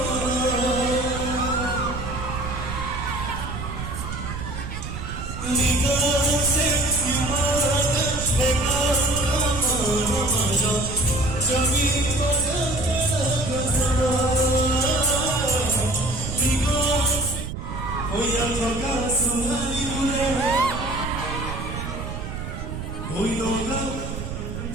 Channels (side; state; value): right; noise; rumble, 7 dB below the sound